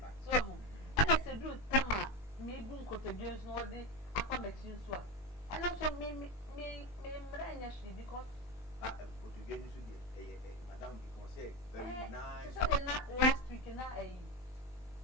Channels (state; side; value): late; right; 20 ms